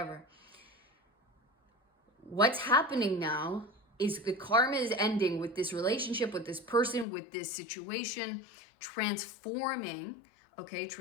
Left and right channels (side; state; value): right; drops out; at 7.1 s